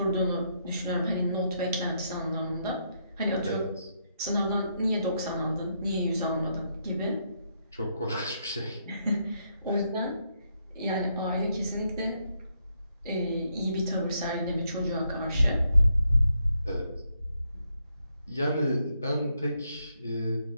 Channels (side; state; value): both; inverted; correlation -0.77